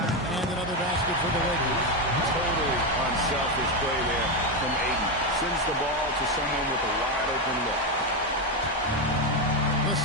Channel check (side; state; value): both; normal; correlation 0.09